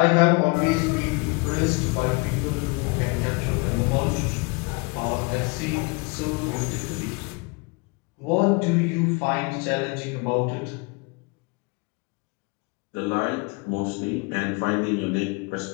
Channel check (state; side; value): quieter; right; 29.1 dB